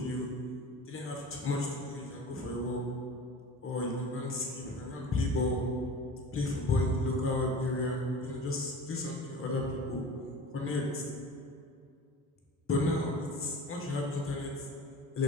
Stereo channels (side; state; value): both; normal; correlation 0.37